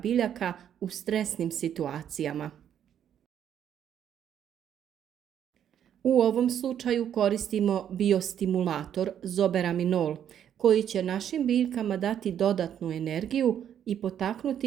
u stresnim situacijama. U ovom slučaju koristimo biostimulator zoberaminol, koji će našim biljkama dati dodatnu energiju i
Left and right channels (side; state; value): left; quieter; 9.6 dB